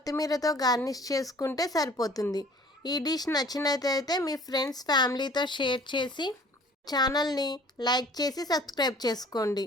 గార్నిష్ చేసుకుంటే సరిపోతుంది. ఈ డిష్ నచ్చినట్లయితే మీ ఫ్రెండ్స్ ఫ్యామిలీతో షేర్ చేసి ఛానల్ని లైక్ చేసి సబ్స్క్రైబ్ చేసుకోండి.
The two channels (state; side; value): normal; both; correlation 0.51